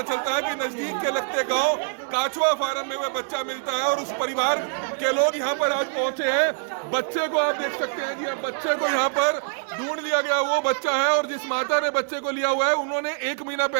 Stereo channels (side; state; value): left; silent; digital silence